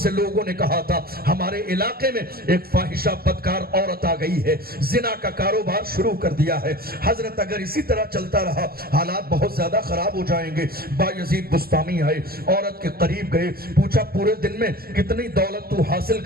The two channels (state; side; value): late; left; 0.44 ms